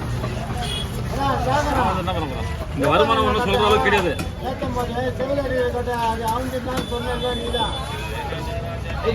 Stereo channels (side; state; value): both; identical; correlation 1.00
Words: என்ன பண்ண போறோம் இந்த வருமானம் ஒன்றும் சொல்ற அளவுக்கு கிடையாது